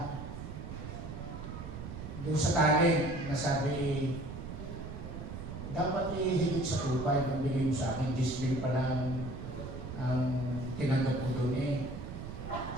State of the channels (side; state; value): right; noise; rumble, 9 dB below the sound